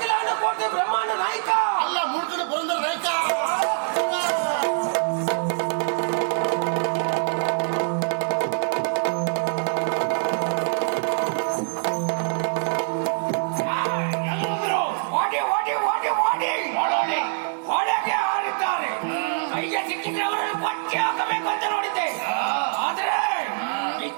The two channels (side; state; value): left; silent; digital silence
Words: ಕೋಟೆ ಬ್ರಹ್ಮಾಂಡ ನಾಯಕ ಅಲ್ಲ ಮೂರ್ತಿನ ಪುರಂದರ ನಾಯಕ